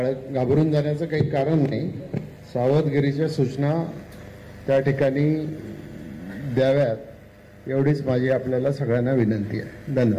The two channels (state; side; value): identical; both; correlation 1.00